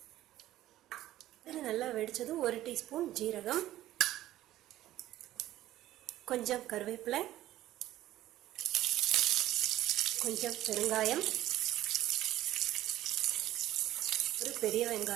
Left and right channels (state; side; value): quieter; left; 14.4 dB